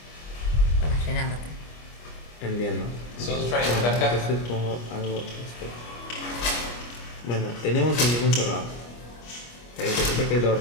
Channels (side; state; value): right; late; 25 ms